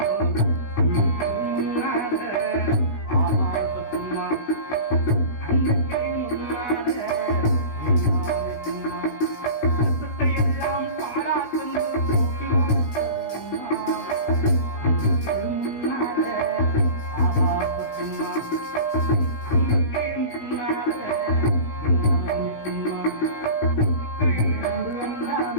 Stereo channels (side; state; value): right; late; 16 ms